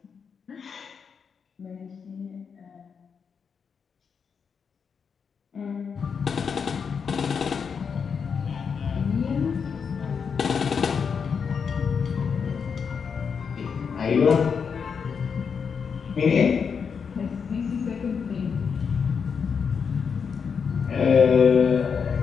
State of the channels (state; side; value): quieter; right; 6.3 dB